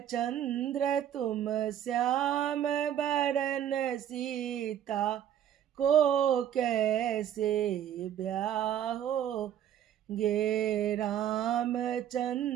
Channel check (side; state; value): left; quieter; 10.3 dB